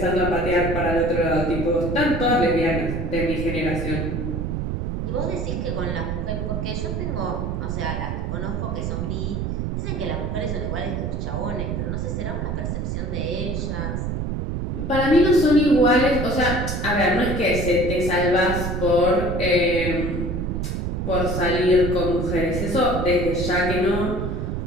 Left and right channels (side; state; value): right; noise; rumble, 2 dB below the sound